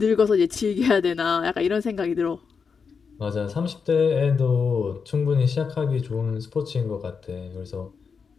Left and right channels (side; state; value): right; quieter; 5.7 dB